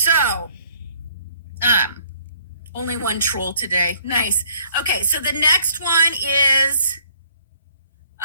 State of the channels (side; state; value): both; inverted; correlation -0.61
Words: only one troll today. Nice. Okay, so the next one is